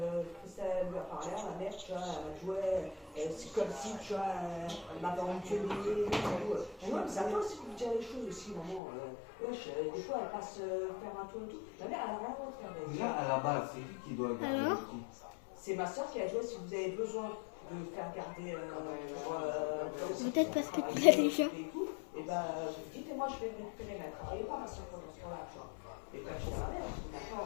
Christelle lui a parlé, la mère, tu vois, elle jouait, c'est comme si, tu vois, elle m'avait engueulé et tout. Et moi, ça peut aussi vous dire les choses aussi, maman. Wesh, des fois, elle passe faire un tour et tout. La mère, elle n'a rien à faire. Déjà, à la base, c'est qui doit garder Alors le petit? C'est ma soeur qui a joué si vous avez besoin de faire garder Peut-être parce que tu l'as déjà. et ben vous dites et moi je vais me récupérer, mais elle travaillait pas ma soeur pendant ce temps-là, tu vois. Et quand j'étais à ma mère, je dis maintenant,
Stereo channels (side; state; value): right; drops out; at 8.8 s